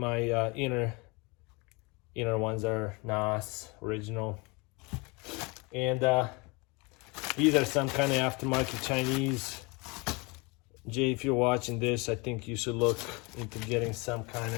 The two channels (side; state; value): right; quieter; 28.0 dB